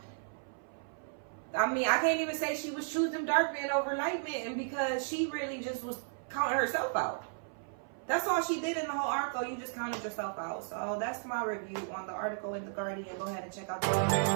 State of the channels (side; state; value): left; silent; 55 dB below the other